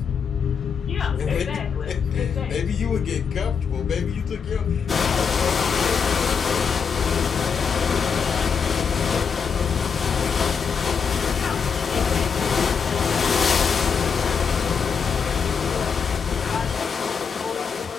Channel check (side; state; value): right; quieter; 6.2 dB